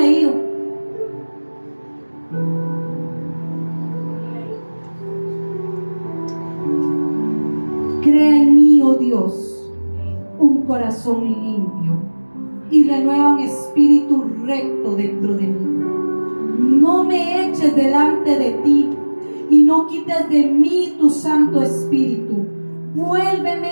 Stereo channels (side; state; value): both; inverted; correlation -1.00